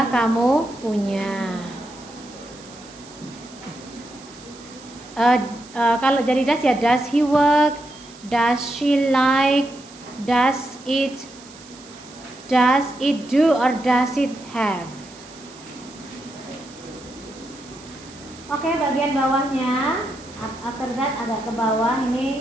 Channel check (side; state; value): right; noise; hiss, 21 dB below the sound